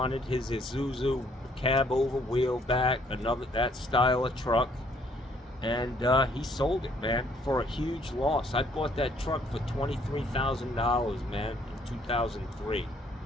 his Isuzu cab over wheel back, that style of truck, and he sold it, man, for a huge loss. I bought that truck for $23,000, man, in 2003.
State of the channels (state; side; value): normal; both; correlation 0.65